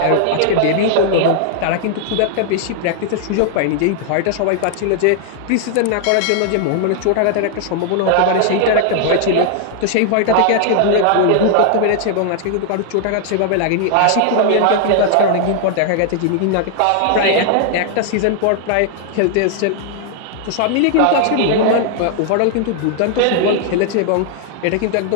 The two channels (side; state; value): both; different; correlation 0.00